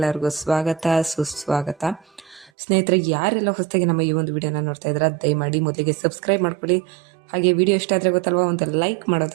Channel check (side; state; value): left; drops out; at 2.5 s